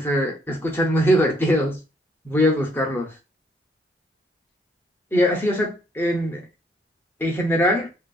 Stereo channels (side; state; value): both; normal; correlation 0.67